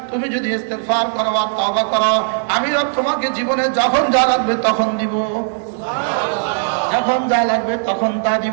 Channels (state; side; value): silent; left; digital silence